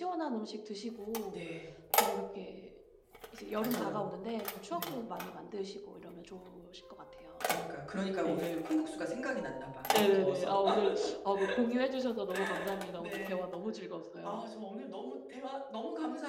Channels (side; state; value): both; identical; correlation 1.00